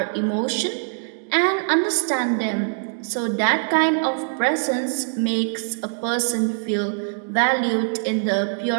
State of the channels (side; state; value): left; silent; digital silence